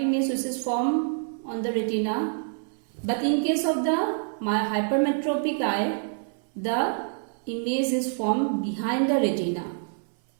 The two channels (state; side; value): silent; left; 60 dB below the other